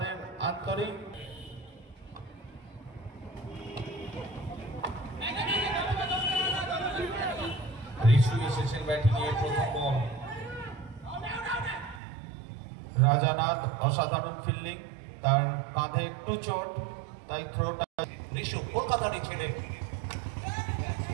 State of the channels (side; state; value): left; drops out; at 12.0 s